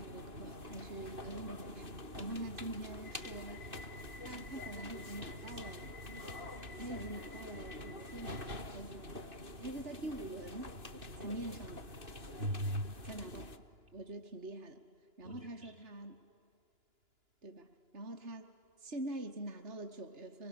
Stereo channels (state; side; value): late; left; 2.9 ms